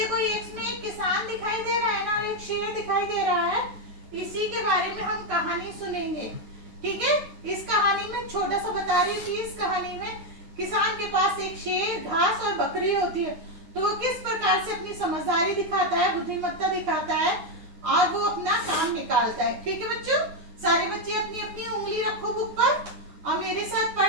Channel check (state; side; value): late; left; 9.6 ms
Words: इसमें एक किसान दिखाई दे रहा है ना, एक शेर दिखाई दे रहा है। इसी के बारे में हम कहानी सुनेंगे, ठीक है। इस कहानी में छोटा सा बता रही थी, इस कहानी में किसान के पास एक शेर, घास और बकरी होती है। तो वो किस प्रकार से अपनी समझदारी दिखाता है, बुद्धिमत्ता दिखाता है और वो अपना काम निकालता है। ठीक है बच्चों, सारे बच्चे अपनी अपनी उंगली रखो बुक पर और मेरे साथ